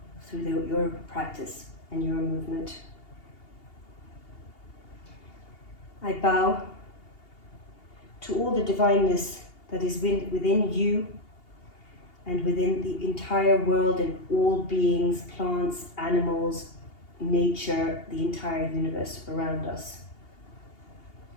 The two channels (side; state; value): right; late; 2.8 ms